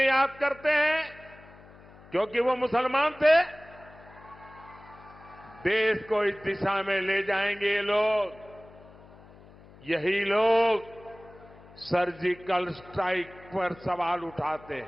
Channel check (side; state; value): left; noise; hum, 22 dB below the sound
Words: करते हैं क्योंकि वो मुसलमान थे? देश को इस दिशा में ले जाएंगे ये लोग। यही लोग सर्जिकल स्ट्राइक पर सवाल उठाते